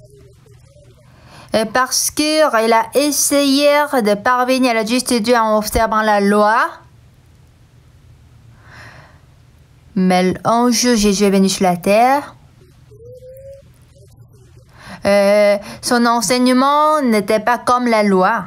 et parce qu'il a essayé de parvenir à la justice de Dieu en observant la loi, mais un jour Jésus est venu sur la terre. Son enseignement n'était pas comme la loi.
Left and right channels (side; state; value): both; identical; correlation 1.00